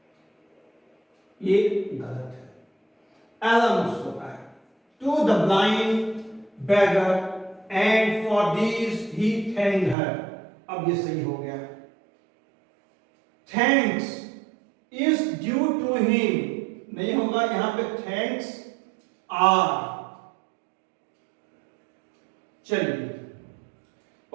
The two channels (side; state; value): left; drops out; at 10.0 s